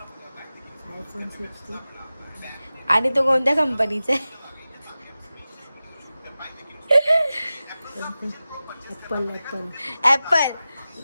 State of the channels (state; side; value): inverted; both; correlation -0.95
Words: iPhone 16. आणि तो कोणत्या कंपनीचा आहे? ऍपल.